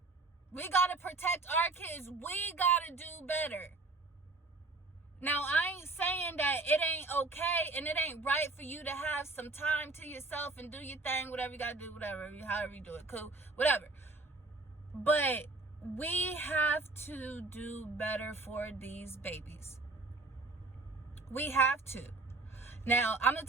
We got to protect our kids. We got to do better. Now, I ain't saying that it ain't okay and it ain't right for you to have some time to yourself and do your thing, whatever you got to do, whatever, however you do it, cool, whatever. But we have to do better for these babies. We have to. Now, I'm going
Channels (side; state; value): left; quieter; 3.4 dB